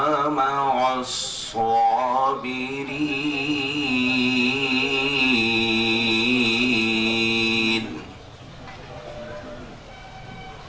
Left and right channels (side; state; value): both; identical; correlation 1.00